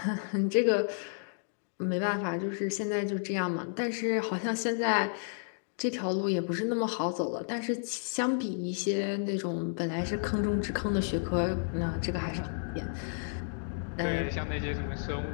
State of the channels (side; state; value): right; silent; digital silence